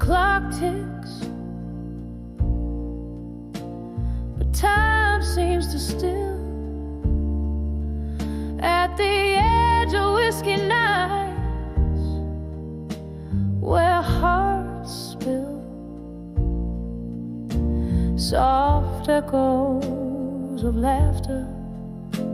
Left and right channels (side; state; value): both; identical; correlation 1.00